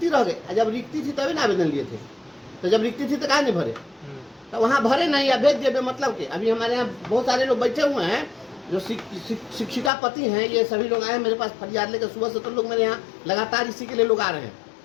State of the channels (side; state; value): right; drops out; at 9.9 s